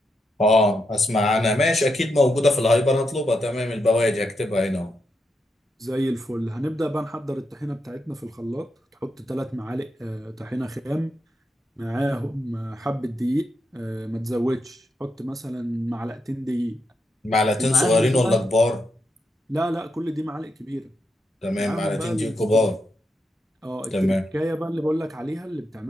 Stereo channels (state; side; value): normal; both; correlation 0.83